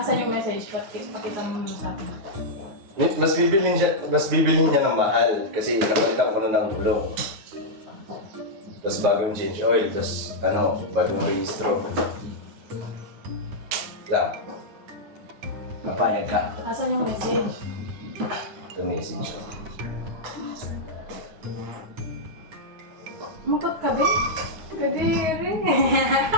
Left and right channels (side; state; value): left; late; 9.9 ms